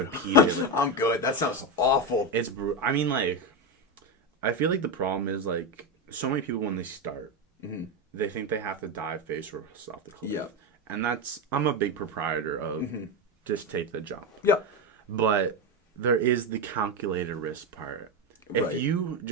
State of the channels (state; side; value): normal; both; correlation 0.12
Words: I'm good. That sounds awful. It's I mean like I feel like the problem is like so many people when they start they think they have to dive face first off the cliff. Yeah. And I'm a big proprietor of just take the jump. Yeah. But there is the calculated risk part. If you